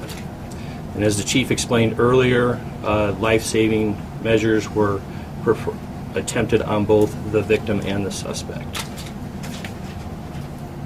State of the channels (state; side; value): identical; both; correlation 1.00